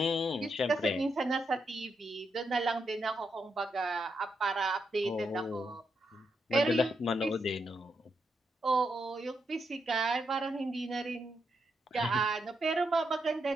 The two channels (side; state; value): both; normal; correlation 0.82